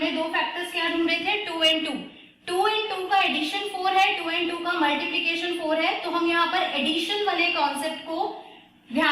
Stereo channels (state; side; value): identical; both; correlation 1.00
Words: 2 फैक्टर्स क्या ढूंढे थे, 2 and 2। 2 and 2 का एडिशन 4 है, 2 and 2 का मल्टीप्लीकेशन 4 है, तो हम यहाँ पर एडिशन वाले कॉन्सेप्ट को